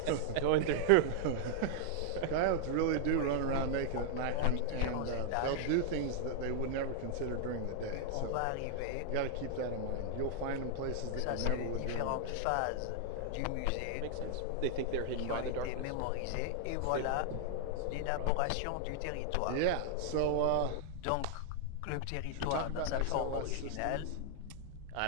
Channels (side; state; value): both; different; correlation 0.00